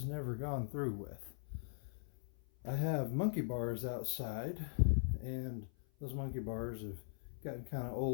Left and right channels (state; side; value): silent; right; 51 dB below the other